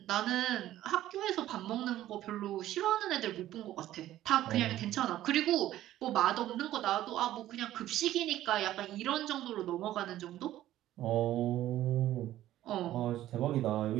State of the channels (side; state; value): left; quieter; 13.7 dB